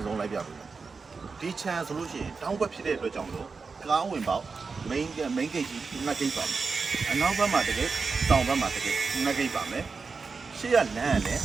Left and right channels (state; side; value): quieter; left; 4.7 dB